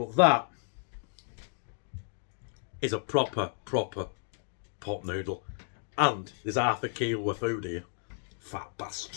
that is a proper pot noodle. And there's half a kilo of food here. Fat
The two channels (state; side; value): silent; right; 56 dB below the other